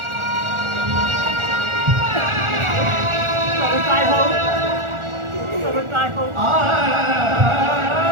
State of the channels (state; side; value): late; left; 1.4 ms